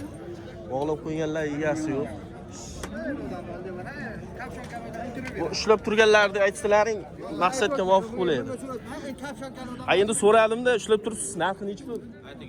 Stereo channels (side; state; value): both; identical; correlation 1.00